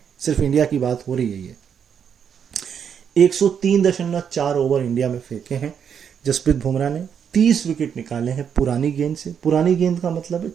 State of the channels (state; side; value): quieter; left; 7.7 dB